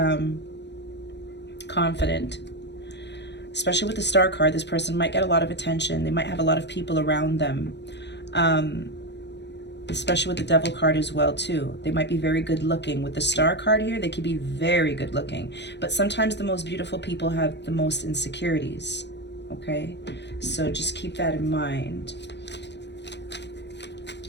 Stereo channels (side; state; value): right; late; 0.50 ms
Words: confident. Especially with the Star card, this person might get a lot of attention. They might have a lot of people around them. Especially with the Devil card as well too. They might be very good looking. With the Star card here, they could be very good looking. But sometimes the most beautiful people have the most insecurities, okay? So just keep that in mind.